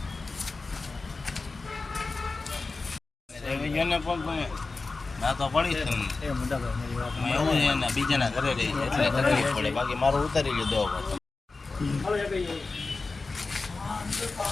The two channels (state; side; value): quieter; right; 3.8 dB